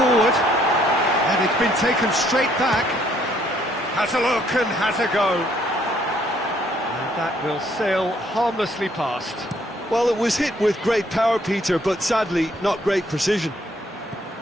And it's been taken straight back. Has a look and has a go. And that will sail harmlessly past. Well, it was hit with great power, Peter, but sadly not great precision.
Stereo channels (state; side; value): normal; both; correlation 0.66